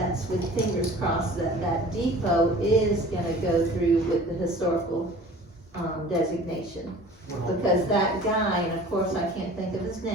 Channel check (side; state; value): both; normal; correlation 0.45